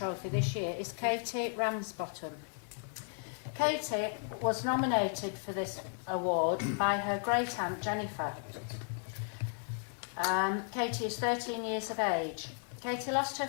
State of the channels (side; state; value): right; silent; 55 dB below the other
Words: this year is Katie Ramsbottom. Katie was nominated for this award by her great-aunt Jennifer. Katie is 13 years of age. Katie lost